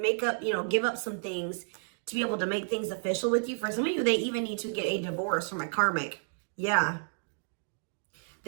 up some things to be able to make things official with you. For some of you, they even need to get a divorce from a karmic. Yeah.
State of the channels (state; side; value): silent; left; digital silence